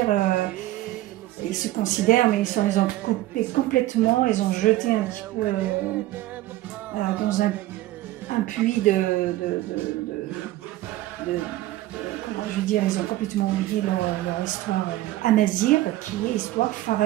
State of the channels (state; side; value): quieter; left; 16.1 dB